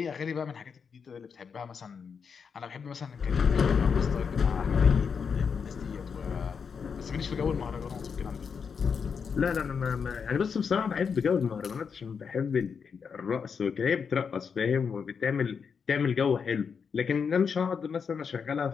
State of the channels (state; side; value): quieter; right; 6.2 dB